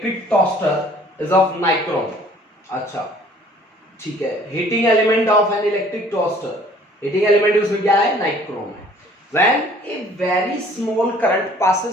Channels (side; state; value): both; normal; correlation 0.54